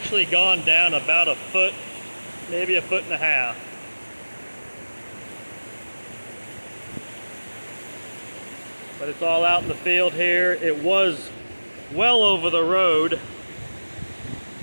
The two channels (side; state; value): both; inverted; correlation -1.00